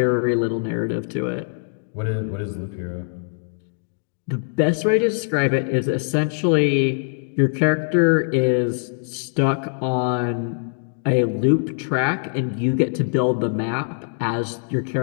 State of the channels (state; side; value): silent; right; digital silence